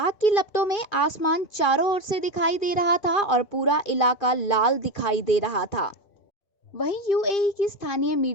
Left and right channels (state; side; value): late; right; 2.4 ms